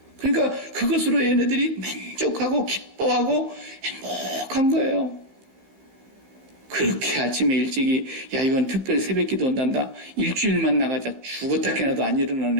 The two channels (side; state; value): left; late; 15 ms